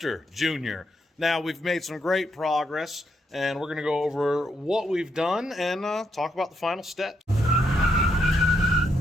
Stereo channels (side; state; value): both; normal; correlation 0.78